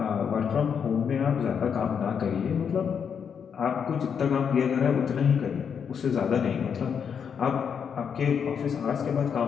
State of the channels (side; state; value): right; quieter; 7.1 dB